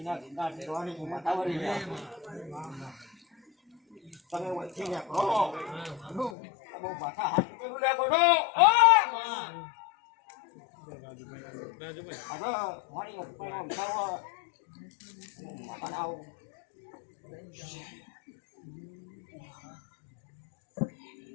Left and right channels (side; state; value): right; drops out; at 6.4 s